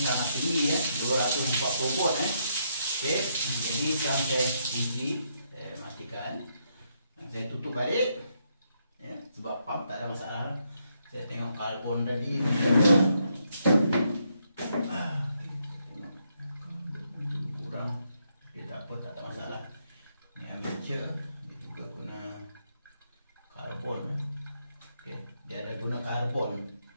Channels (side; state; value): both; inverted; correlation -0.77